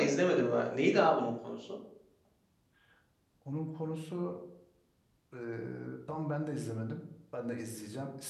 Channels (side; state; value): both; identical; correlation 1.00